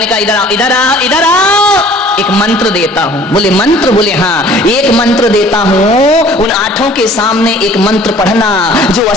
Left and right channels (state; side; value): normal; both; correlation 0.52